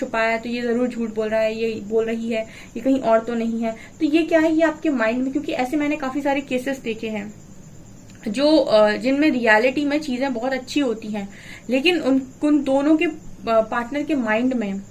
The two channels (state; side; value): identical; both; correlation 1.00